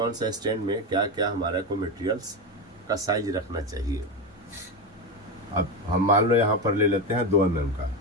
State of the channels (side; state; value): both; normal; correlation 0.15